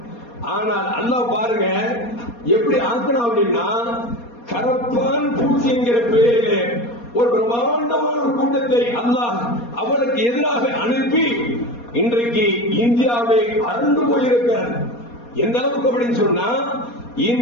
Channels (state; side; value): late; right; 4.2 ms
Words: ஆனால் அல்லாஹ் பாருங்க எப்படி ஆக்கணும் அப்படின்னா, கரப்பான் பூச்சி என்கிற பெயரிலே ஒரு பிரம்மாண்டமான ஒரு கூட்டத்தை அல்லாஹ் அவளுக்கு எதிராக அனுப்பி இன்றைக்கு இந்தியாவை அறந்து போயிருக்கிறார். எந்த அளவுக்கு அப்படின்னு சொன்னா,